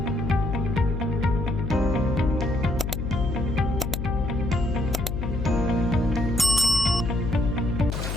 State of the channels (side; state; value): left; noise; hum, 3 dB below the sound